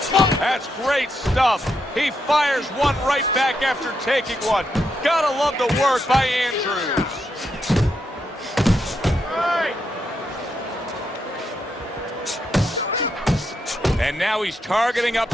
That's great stuff. He fires one right back after taking one. Gotta love the work by Andrews. And now he's targeting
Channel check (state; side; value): normal; both; correlation 0.81